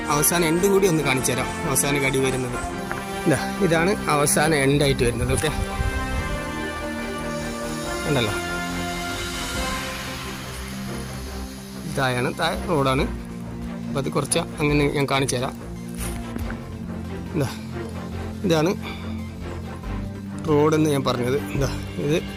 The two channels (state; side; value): identical; both; correlation 1.00